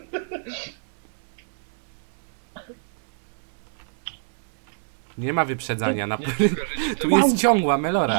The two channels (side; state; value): left; silent; digital silence